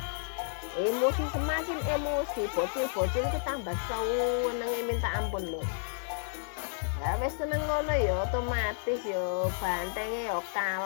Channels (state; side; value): silent; right; digital silence